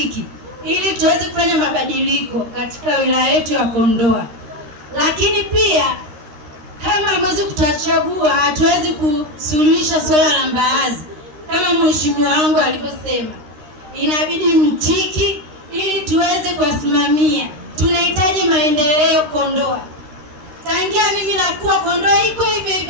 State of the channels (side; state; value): left; late; 13 ms